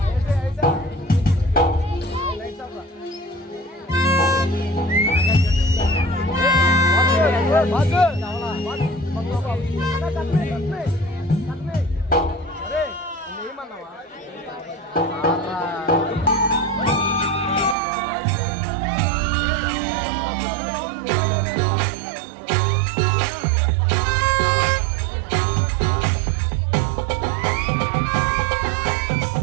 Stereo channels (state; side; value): drops out; left; at 17.8 s